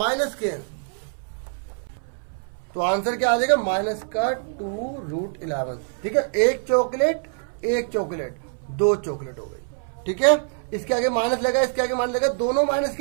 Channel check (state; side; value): silent; left; 62 dB below the other